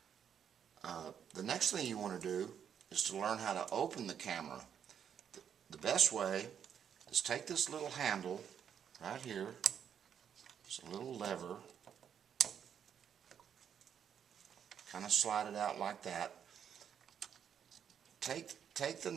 The next thing you want to do is to learn how to open the camera. The best way is take this little handle right here. It's a little lever. Kind of slide it out like that. Take the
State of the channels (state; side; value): quieter; left; 8.3 dB